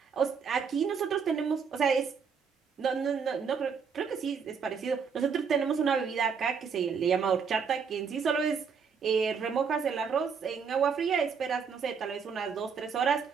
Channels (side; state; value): left; quieter; 6.2 dB